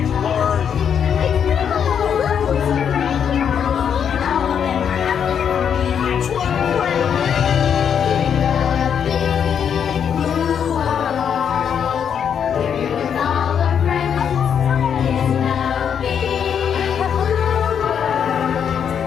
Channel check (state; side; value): quieter; right; 7.9 dB